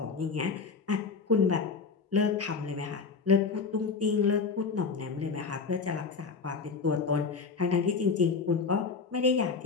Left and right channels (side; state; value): right; quieter; 4.9 dB